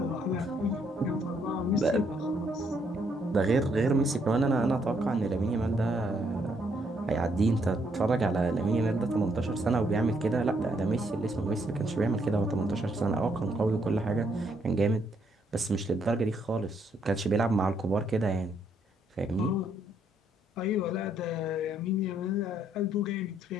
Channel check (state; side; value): normal; both; correlation 0.72